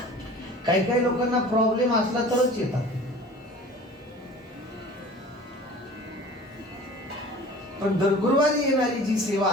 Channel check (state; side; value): normal; both; correlation 0.43